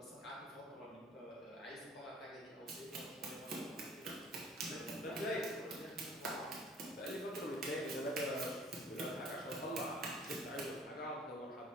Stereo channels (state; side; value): normal; both; correlation 0.52